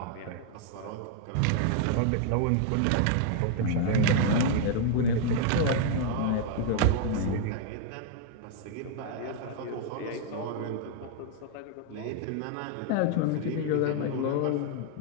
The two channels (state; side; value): different; both; correlation 0.00